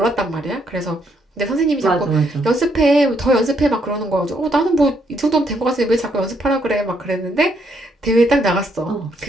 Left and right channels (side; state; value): both; normal; correlation 0.73